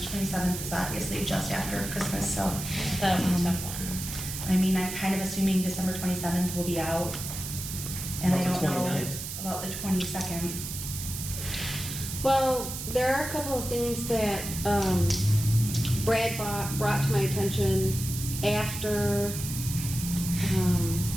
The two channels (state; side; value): noise; right; hiss, 7 dB below the sound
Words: 27th is obviously just after Christmas, so. That was a tough one. I mean, I'm kind of assuming December 27th will be out. And I About don't the know 29th. about the 22nd. Well, there are a couple of things that Brad brought to my attention after